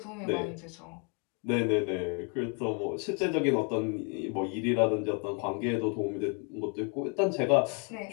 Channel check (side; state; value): right; quieter; 36.2 dB